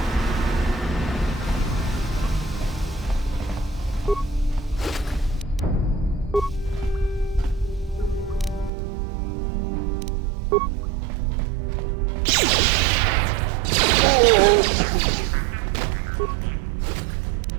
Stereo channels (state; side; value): drops out; left; at 8.7 s